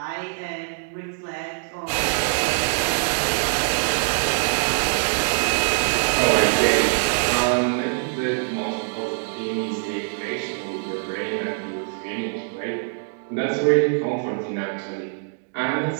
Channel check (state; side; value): silent; left; digital silence